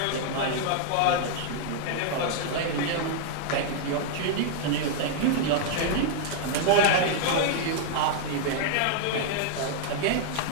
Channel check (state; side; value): different; both; correlation -0.01